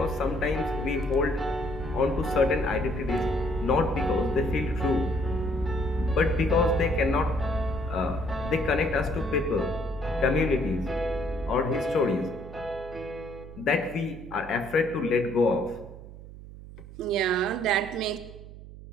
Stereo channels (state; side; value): noise; right; hum, 15 dB below the sound